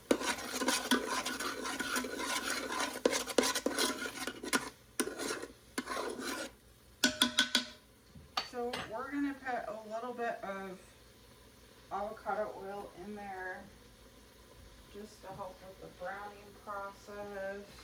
So we're gonna put a little bit of avocado oil in there just to help with the browning process.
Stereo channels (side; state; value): both; identical; correlation 1.00